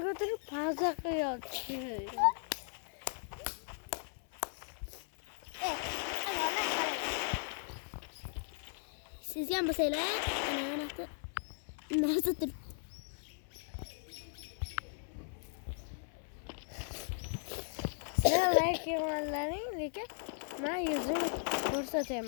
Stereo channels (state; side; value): silent; right; 53 dB below the other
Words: ko'tarib pauza qilyapti. Sizga ham bo'lsanglar, narsa turib. Sizlar like qilganlaring, lekin men yuzimni